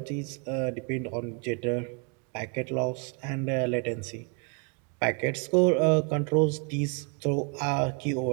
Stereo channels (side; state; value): left; quieter; 34.8 dB